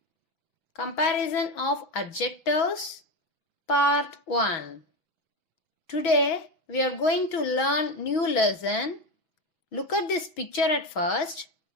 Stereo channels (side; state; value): right; late; 5.9 ms